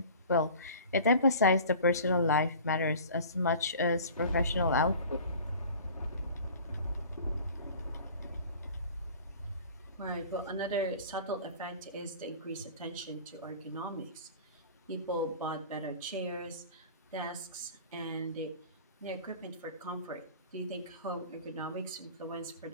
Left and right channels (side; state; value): both; inverted; correlation -0.43